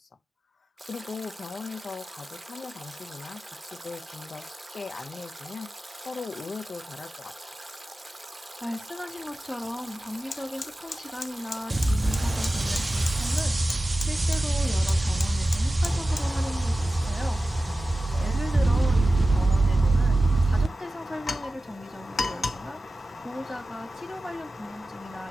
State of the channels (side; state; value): both; normal; correlation 0.95